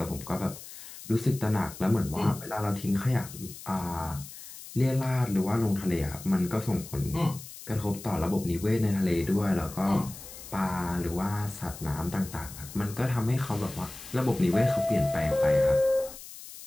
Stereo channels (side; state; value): left; noise; hiss, 14 dB below the sound